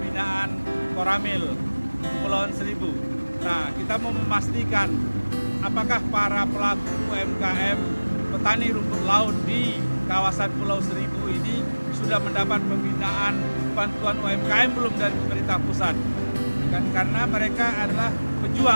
Koramil Kepulauan Seribu. Nah, kita mau memastikan apakah para pelaku UMKM petani rumput laut di kawasan Pulau Seribu ini sudah mendapat pembinaan bantuan UMKM belum dari pemerintah pusat. Karena mereka adalah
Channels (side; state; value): both; inverted; correlation -1.00